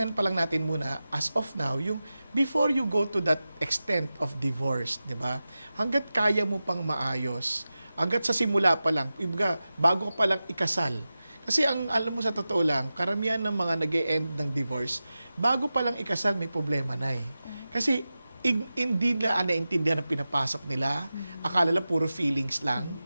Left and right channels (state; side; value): inverted; both; correlation -0.94